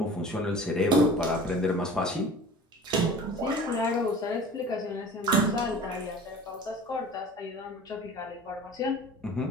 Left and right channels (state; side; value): normal; both; correlation 0.41